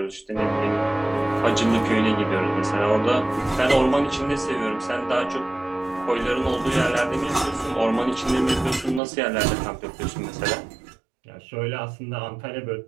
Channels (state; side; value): drops out; left; at 9.0 s